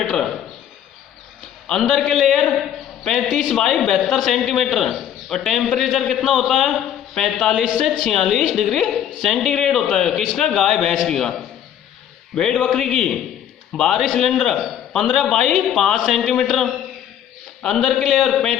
अंदर के लेयर 35 बाई 72 सेंटीमीटर। और टेम्परेचर कितना होता है? 45 से 46 डिग्री सेंटीग्रेड होता है। किसका? गाय भैंस की का। भेड़ बकरी की बाहरी सिलेंडर 15 बाई 5 सेंटीमीटर। अंदर के लेयर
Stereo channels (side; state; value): right; quieter; 10.0 dB